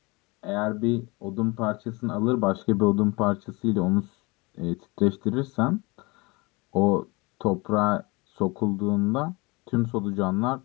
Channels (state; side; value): quieter; right; 25.8 dB